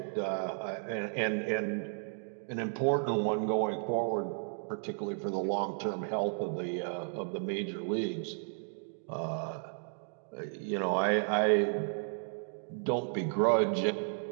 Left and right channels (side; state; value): left; silent; digital silence